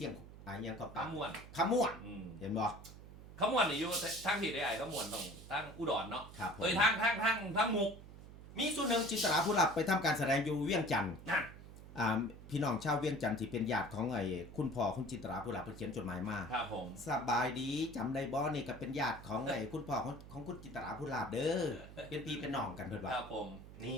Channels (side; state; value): right; noise; hum, 16 dB below the sound